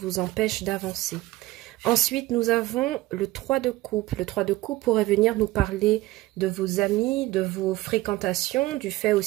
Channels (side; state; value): left; quieter; 17.9 dB